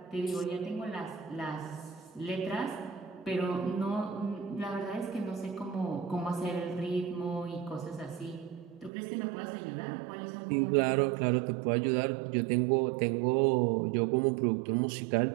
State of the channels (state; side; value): drops out; left; at 8.9 s